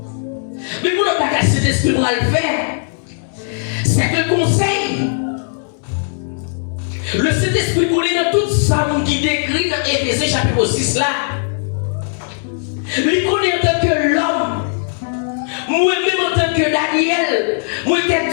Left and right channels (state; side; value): silent; right; digital silence